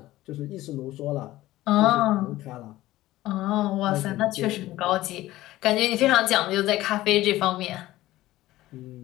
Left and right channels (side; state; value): right; quieter; 16.3 dB